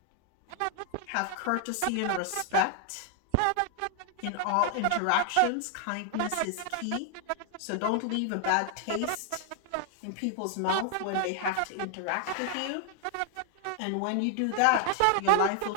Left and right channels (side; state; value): both; different; correlation 0.00